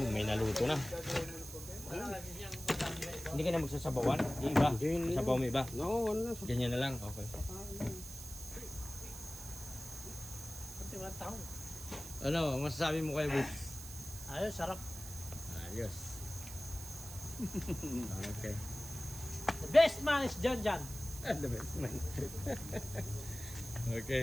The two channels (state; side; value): noise; right; hiss, 11 dB below the sound